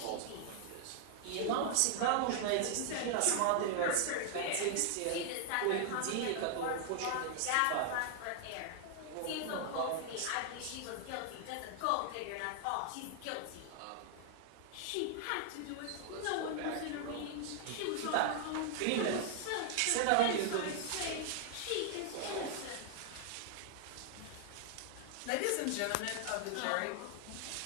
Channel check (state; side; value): different; both; correlation 0.00